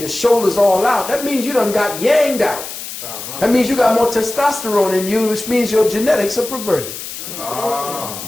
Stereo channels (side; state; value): left; noise; hiss, 9 dB below the sound